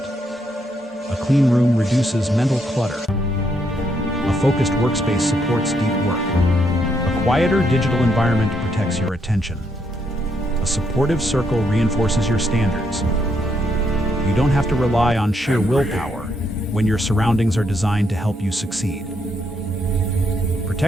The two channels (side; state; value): both; normal; correlation 0.76